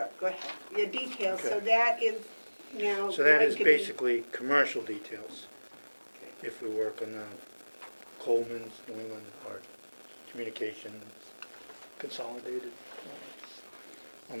go ahead. Your details, so Okay. that is now. So that going is to be- basically commercial details. Okay. If we work on Coleman's, New England, or Communications, Consolidated, on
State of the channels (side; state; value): both; inverted; correlation -1.00